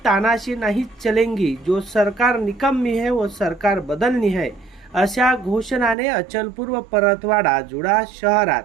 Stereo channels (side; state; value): left; drops out; at 6.0 s